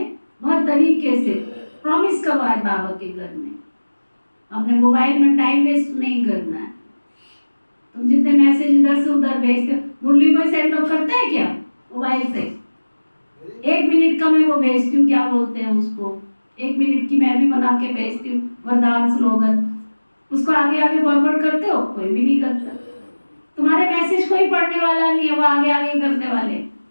बहुत तरीके से प्रॉमिस करवाए बाबा के घर में। अपने मोबाइल में टाइम वेस्ट नहीं करना है। तुम जितने मैसेज इधर से उधर भेजते, मुरली को सेंड ऑफ करते हैं क्या मोबाइल से? 1 मिनट का मैं वो भेजती हूँ, क्या बोलते हैं उसको, 1 मिनट की मैं भी बना के भेजती हूँ, वरदान स्लोगन, उसको आगे आगे फॉरवर्ड करते हो? कोई भी नहीं करता। तुम्हारे मैसेज कोई पढ़ने वाला नहीं है, वो आगे आगे करने वाले।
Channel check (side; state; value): both; inverted; correlation -1.00